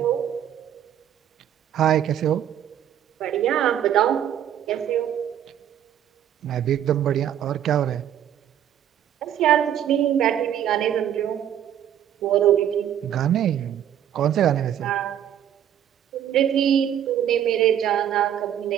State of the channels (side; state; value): left; quieter; 10.3 dB